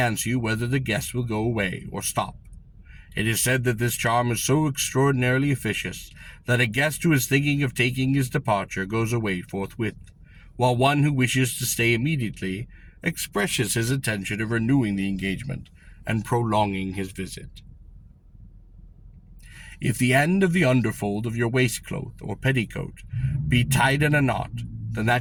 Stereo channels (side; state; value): both; identical; correlation 1.00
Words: you whether the guest will go away or stop. It is said that this charm is so extraordinarily efficacious that a guest who is thinking of taking his departure goes away forthwith, while one who wishes to stay immediately expresses his intention of renewing the engagement and prolonging his visit. If the end of the underfold of your waistcloth or petticoat be tied in a knot, then